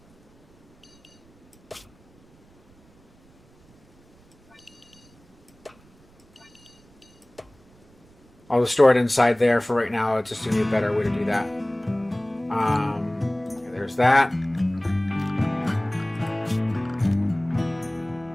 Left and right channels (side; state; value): right; noise; rumble, 30 dB below the sound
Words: I'll just store it inside there for right now. It's just going to be a better way to do that. There's that.